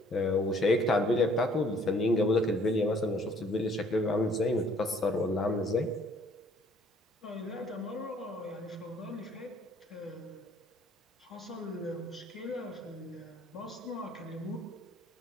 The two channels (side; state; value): both; normal; correlation 0.59